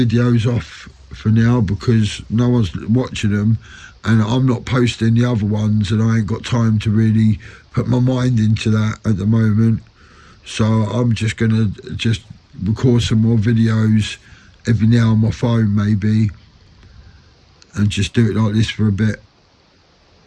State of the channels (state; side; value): identical; both; correlation 1.00